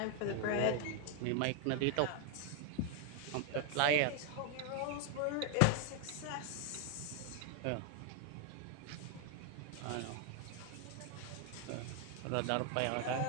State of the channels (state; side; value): different; both; correlation 0.01